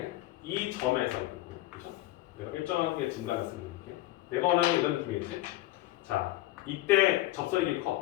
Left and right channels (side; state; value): right; quieter; 16.5 dB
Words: 이 점에서 그죠? 내가 일정하게 증가했으면 이렇게 내가 원하는 이런 느낌이겠지? 자, 이때 접선의 길이